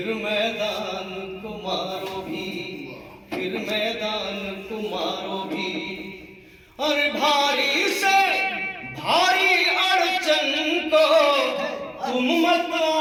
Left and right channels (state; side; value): identical; both; correlation 1.00